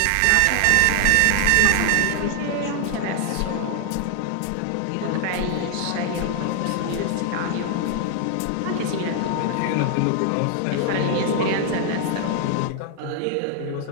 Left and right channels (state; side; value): different; both; correlation 0.00